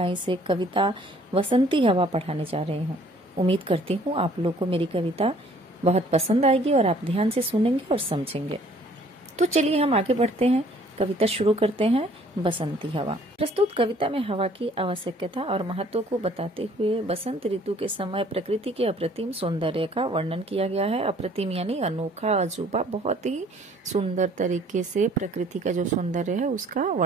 से कविता बसंती हवा पढ़ाने जा रही हूँ। उम्मीद करती हूँ आप लोग को मेरी कविता बहुत पसंद आएगी और आप ध्यान से सुनेंगे और समझेंगे। तो चलिए हम आगे बढ़ते हैं, कविता शुरू करते हैं। बसंती हवा। प्रस्तुत कविता में हवा की आवश्यकता और महत्व को बताते हुए बसंत ऋतु के समय प्रकृति के अप्रतिम सौंदर्य का वर्णन किया गया है। अप्रतिम यानी अनोखा, अजूबा, बहुत ही सुंदर तरीके से प्रकृति का जो सौंदर्य है उसका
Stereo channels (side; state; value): both; normal; correlation 0.58